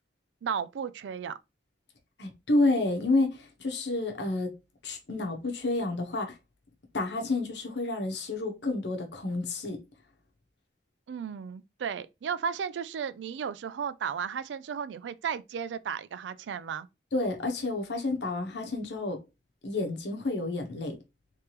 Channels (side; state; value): both; normal; correlation 0.40